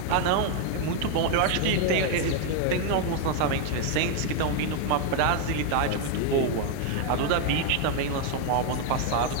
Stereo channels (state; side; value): different; both; correlation 0.00